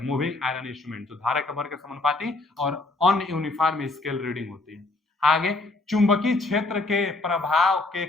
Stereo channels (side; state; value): right; quieter; 3.1 dB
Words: मूविंग आयरन इंस्ट्रूमेंट, जो धारा के वर्ग के समानुपाती और अनयूनिफॉर्म स्केल रीडिंग होती है। आगे, चुंबकीय क्षेत्र के प्रभाव के